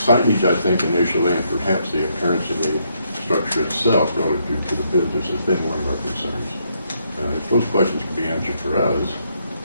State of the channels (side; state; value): both; inverted; correlation -0.75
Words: I think, initially, and perhaps the appearance of the structure itself relative to the business has been one of our concerns. If those questions could be answered for us,